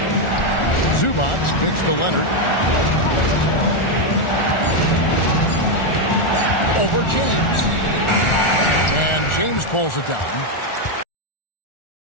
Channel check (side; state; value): right; late; 1.4 ms